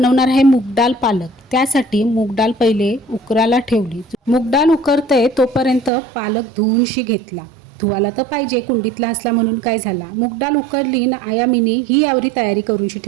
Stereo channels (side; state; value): left; drops out; at 5.9 s